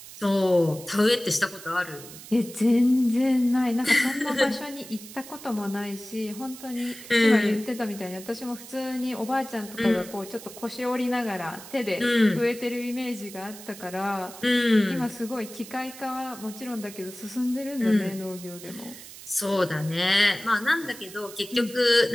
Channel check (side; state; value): right; noise; hiss, 15 dB below the sound